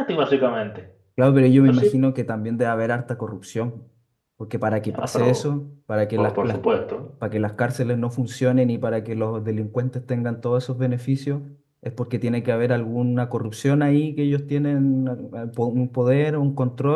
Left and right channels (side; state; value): both; identical; correlation 1.00